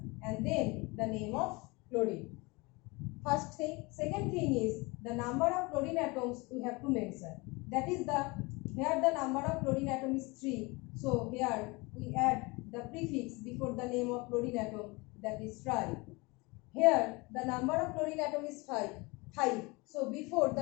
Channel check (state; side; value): quieter; right; 25.7 dB